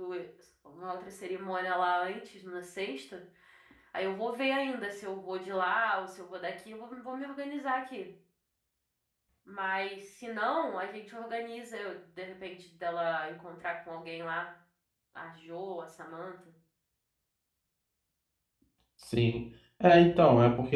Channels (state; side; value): identical; both; correlation 1.00